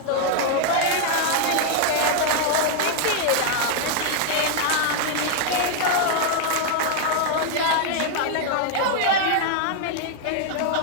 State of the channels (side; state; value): both; different; correlation 0.00